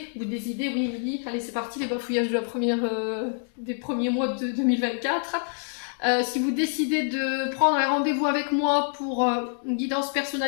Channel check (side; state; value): right; silent; 61 dB below the other